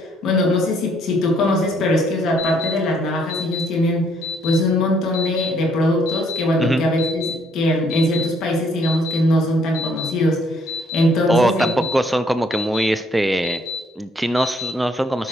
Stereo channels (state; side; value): normal; both; correlation 0.67